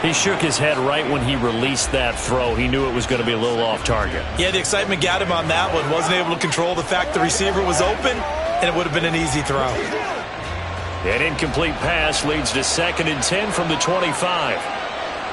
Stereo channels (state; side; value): identical; both; correlation 1.00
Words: He shook his head right when he released that throw. He knew it was going to be a little off target. Yeah, the excitement got him on that one. Wasn't able to control the fact the receiver was open, and it would have been an easy throw. An incomplete pass leads to 2nd and 10 from the 25.